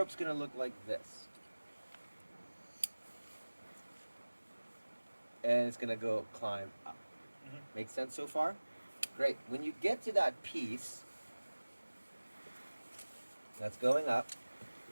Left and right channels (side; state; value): both; inverted; correlation -1.00